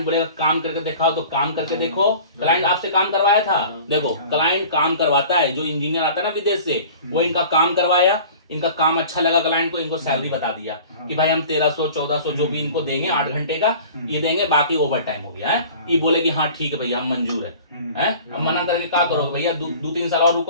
बोलेगा काम करके दिखाओ तो काम करके देखो। क्लाइंट आपसे काम करवाया था, देखो क्लाइंट काम करवाता है, जो इंजीनियर आता है ना विदेश से, वो इनका काम करवाया, इनका काम अच्छा लगा क्लाइंट को, इनको सैलरी बता दिया कि भाई हम 1300 1400 जो भी इनको देंगे 8 घंटे का ये देंगे, बाकी ओवर टाइम हो गया है। ये बोले कि हाँ ठीक है भैया हम मंजूर है। अब मना करके क्या करोगे भैया, 2-3 साल और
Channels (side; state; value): both; inverted; correlation -0.43